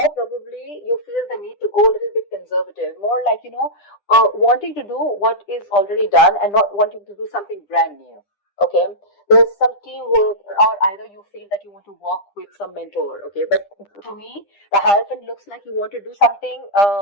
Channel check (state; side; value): late; right; 9.9 ms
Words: probably you feel the need to go a little bit conservative, more like, wanting to do what is already done and not wanting to do something brand new. Okay, there's some teamwork, or either you feel that you want to work with some mentor. Okay, but to me, the Hierophant looks like you want to do something